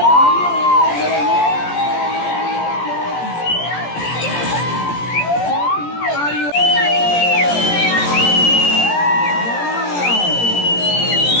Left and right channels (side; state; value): right; late; 17 ms